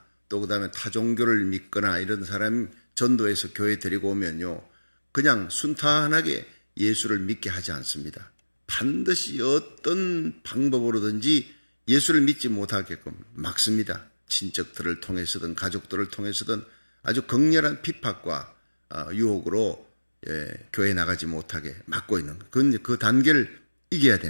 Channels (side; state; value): both; inverted; correlation -1.00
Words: 또 그 다음에 타종교를 믿거나 이런 사람 전도해서 교회 데리고 오면요, 그냥 순탄하게 예수를 믿게 하지 않습니다. 반드시 어떤 방법으로든지 예수를 믿지 못하게끔 막습니다. 친척들을 통해서든 가족들을 통해서든 아주 극렬한 핍박과 유혹으로 교회 나가지 못하게 막고 있는, 그 단계를 이겨야